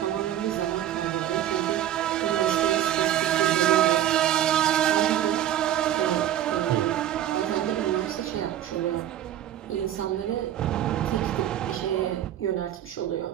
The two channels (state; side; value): quieter; left; 11.6 dB